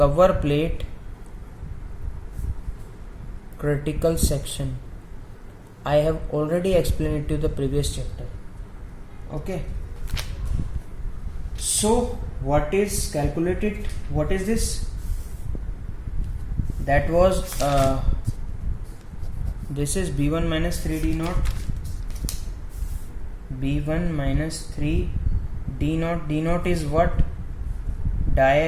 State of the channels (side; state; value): both; identical; correlation 1.00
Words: plate critical section. I have already explained it to the previous chapter. Okay, so what is calculated? What is this? That was this is B1 minus 3 D naught, B1 minus 3 D naught. D naught is what?